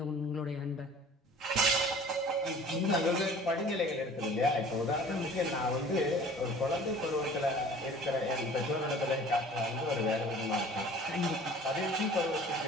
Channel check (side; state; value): both; normal; correlation 0.47